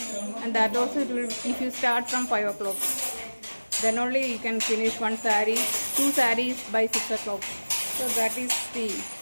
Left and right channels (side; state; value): both; inverted; correlation -1.00